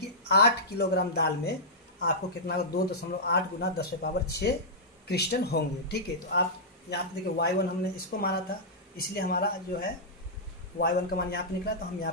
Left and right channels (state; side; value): normal; both; correlation -0.12